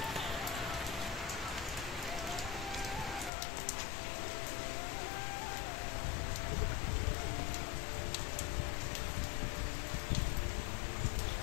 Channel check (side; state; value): right; drops out; at 3.3 s